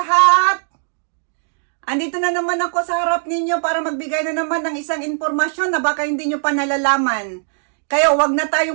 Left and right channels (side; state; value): left; silent; digital silence